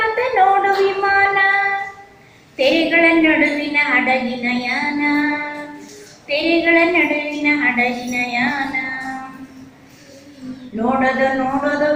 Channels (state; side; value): identical; both; correlation 1.00